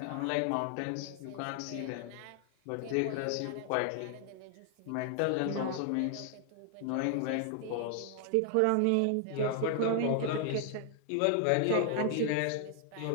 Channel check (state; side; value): different; both; correlation 0.00